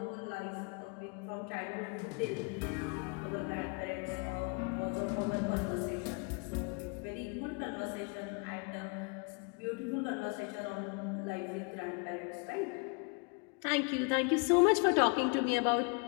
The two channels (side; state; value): right; quieter; 33.3 dB